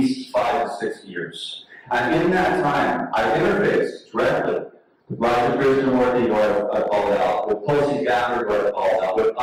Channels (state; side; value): identical; both; correlation 1.00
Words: 5 to 6 years. And in that time, I interfaced directly with Raja Krishnamurti, who I called out, with Tulsi Gabbard, who I called out, with